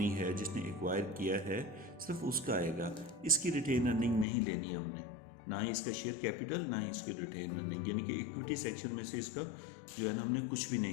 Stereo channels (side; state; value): right; drops out; at 4.2 s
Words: है जिसने एक्वायर किया है सिर्फ उसका आएगा। इसकी रिटेन अर्निंग नहीं लेनी हमने, ना ही इसका शेयर कैपिटल ना ही इसकी रिटेन अर्निंग, यानी कि इक्विटी सेक्शन में से इसका जो है ना हमने कुछ भी